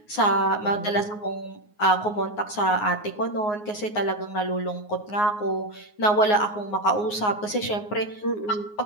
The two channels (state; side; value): late; right; 9.6 ms